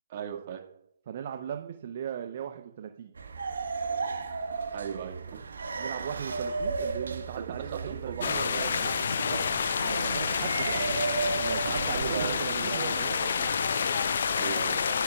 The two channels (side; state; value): both; inverted; correlation -0.75